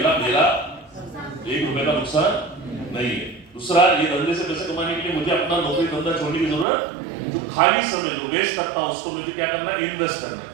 मेरा 1 रुपए का नुकसान नहीं है। दूसरा, ये धंधे से पैसे कमाने के लिए मुझे अपना नौकरी धंधा छोड़ने की जरूरत, जो खाली समय जो वेस्ट करता हूं उसको मुझे क्या करना है? इन्वेस्ट करना है।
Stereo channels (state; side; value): drops out; left; at 6.7 s